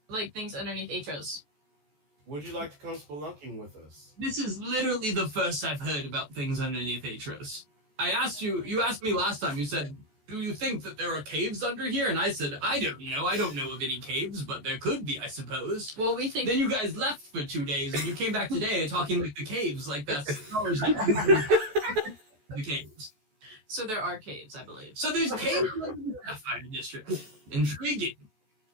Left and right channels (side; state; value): left; late; 14 ms